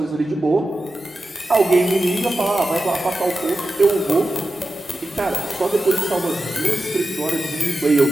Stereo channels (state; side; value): normal; both; correlation 0.92